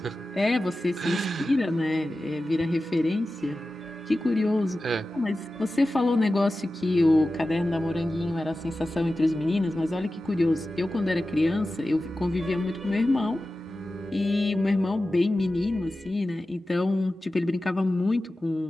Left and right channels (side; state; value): both; normal; correlation 0.94